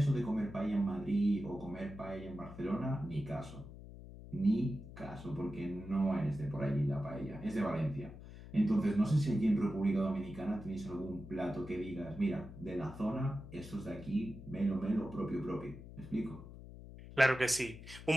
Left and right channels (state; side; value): noise; left; hum, 14 dB below the sound